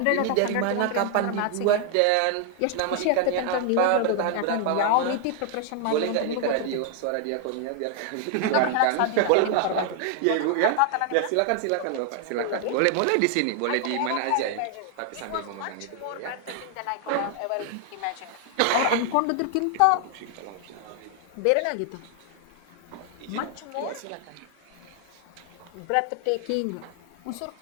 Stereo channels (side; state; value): both; different; correlation 0.00